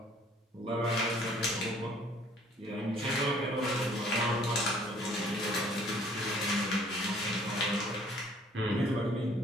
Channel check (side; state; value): both; normal; correlation 0.58